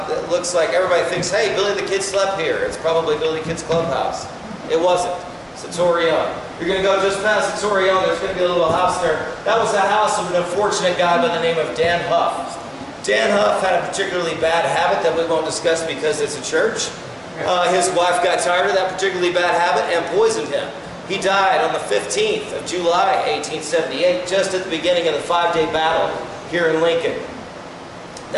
it looks like everybody thinks, hey, Billy the Kid slept here. It's probably Billy the Kid's clubhouse. It wasn't. It's the Torreon. You're going to go just past the Torreon. There's going to be a little house there. That was the house of an unfortunate guy by the name of Dan Huff. Dan Huff had a particularly bad habit that we won't discuss because it's a church. His wife got tired of that particularly bad habit and poisoned him. He died on the 15th of July, 1878, just at the beginning of the 5-day battle here in Lincoln.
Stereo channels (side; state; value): both; identical; correlation 1.00